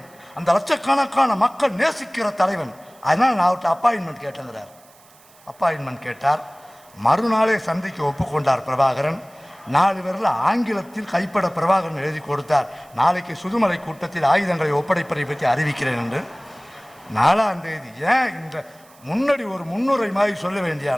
அந்த லட்சக்கணக்கான மக்கள் நேசிக்கிற தலைவன். அதனால் நான் அவர்கிட்ட அப்பாயின்மெண்ட் கேட்டேங்கிறார். அப்பாயின்மெண்ட் கேட்டார். மறுநாளே சந்திக்க ஒப்புக்கொண்டார் பிரபாகரன். 4 பேரில் ஆங்கிலத்தில் கைப்பட பிரபாகரன் எழுதி கொடுத்தார். நாளைக்கு சுதுமலை கூட்டத்தில் ஆயுதங்களை ஒப்படைப்பதை பற்றி அறிவிக்கிறேன் என்று. 4ஆம் தேதி ஏன் இந்த முன்னாடி ஒரு முன்னுரை மாதிரி சொல்ல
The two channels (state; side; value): noise; right; hiss, 27 dB below the sound